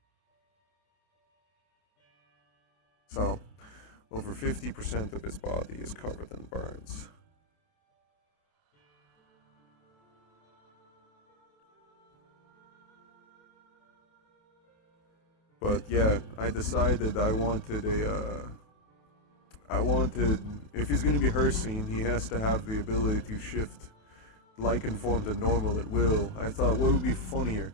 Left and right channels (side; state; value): right; late; 28 ms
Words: So, over 50% of his body is covered in burns. But yeah, I decided I wanted, if he's gonna be Hircine, he has to have the ability to shift Lycan form to normal at will. I thought, what would be funnier?